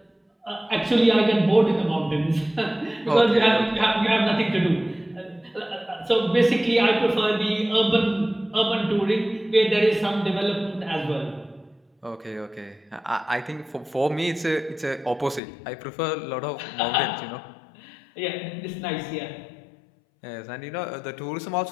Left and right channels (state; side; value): drops out; right; at 15.4 s